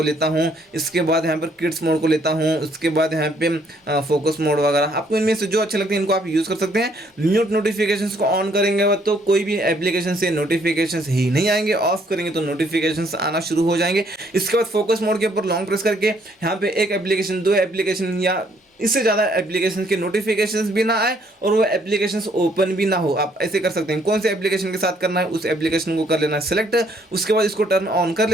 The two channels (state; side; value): normal; both; correlation 0.66